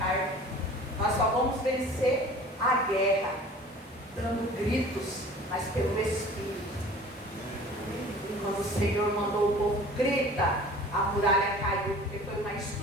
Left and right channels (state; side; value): normal; both; correlation 0.45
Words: Nós só vamos vencer a guerra, dando gritos, mas pelo Espírito. E quando o Senhor mandou o povo grita, a muralha caiu, porque foi uma